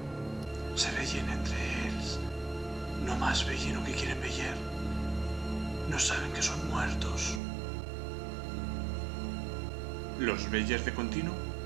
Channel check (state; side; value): drops out; left; at 7.4 s